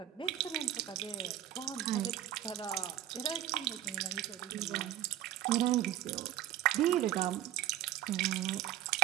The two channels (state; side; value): quieter; left; 12.3 dB